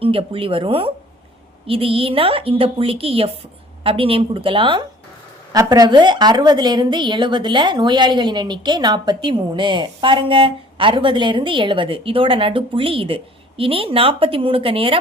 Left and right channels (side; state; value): both; normal; correlation 0.52